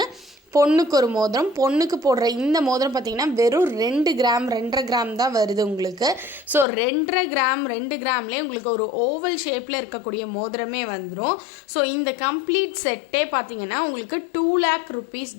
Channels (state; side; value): drops out; right; at 6.7 s